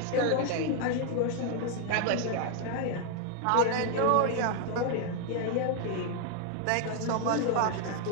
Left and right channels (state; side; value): different; both; correlation 0.00